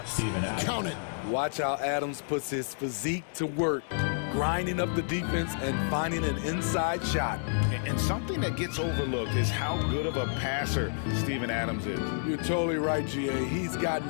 Count it. Watch how Adams puts his physique to work, grinding up the defense and finding an inside shot. And something that gets overlooked is how good of a passer Steven Adams is. You're totally right, GA. He's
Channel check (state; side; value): silent; right; digital silence